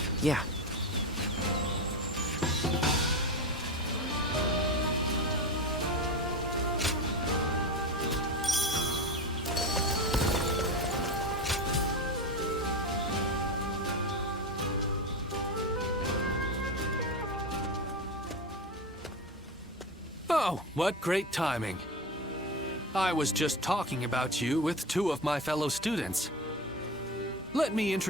Yeah. Oh, what great timing. I was just talking about you with two of my fellow students. Let me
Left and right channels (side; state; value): both; normal; correlation 0.22